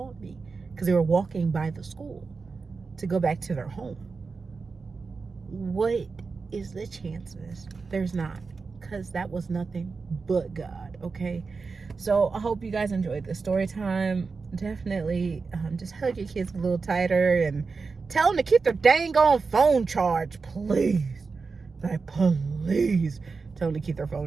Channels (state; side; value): quieter; left; 4.6 dB